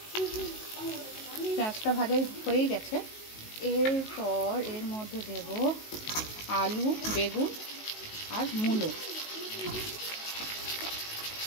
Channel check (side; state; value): right; late; 19 ms